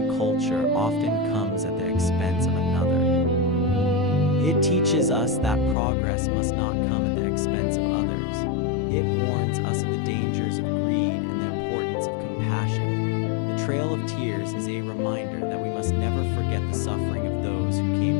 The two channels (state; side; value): drops out; right; at 5.8 s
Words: culture often comes at the expense of another. It teaches us that progress must not come at the expense of others. It warns us of the dangers of greed and the importance of compassion. The Trail of Tears is a reminder that we must never forget the suffering of those who